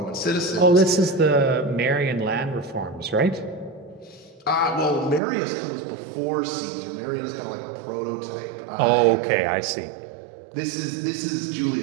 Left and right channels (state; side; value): drops out; left; at 5.2 s